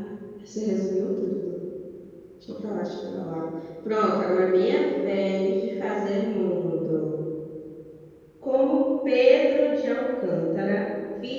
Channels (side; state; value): both; identical; correlation 1.00